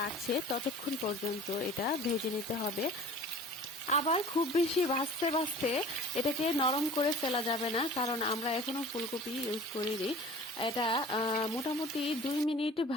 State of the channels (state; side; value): normal; both; correlation 0.44